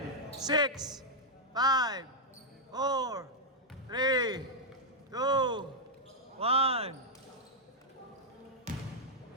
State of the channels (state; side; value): normal; both; correlation -0.04